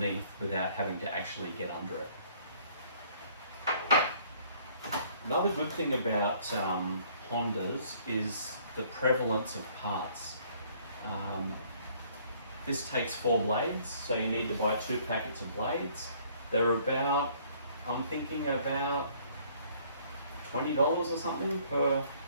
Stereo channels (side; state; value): both; inverted; correlation -0.60